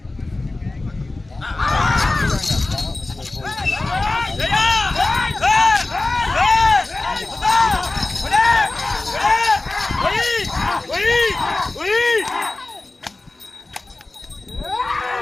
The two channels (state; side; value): quieter; right; 3.1 dB